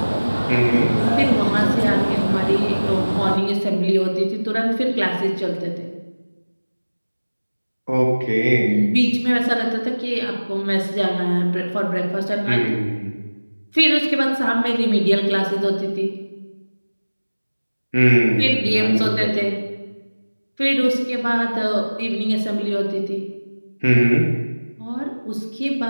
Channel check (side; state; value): both; inverted; correlation -1.00